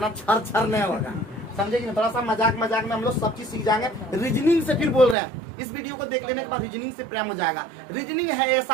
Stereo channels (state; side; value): drops out; left; at 5.2 s